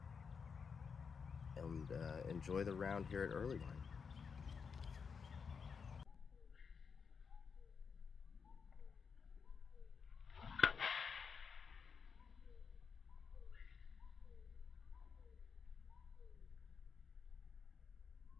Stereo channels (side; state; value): right; quieter; 6.0 dB